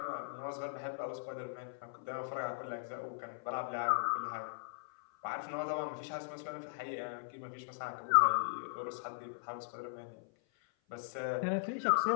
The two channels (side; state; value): right; silent; 52 dB below the other